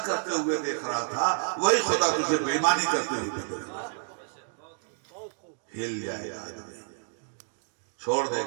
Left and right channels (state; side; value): silent; left; digital silence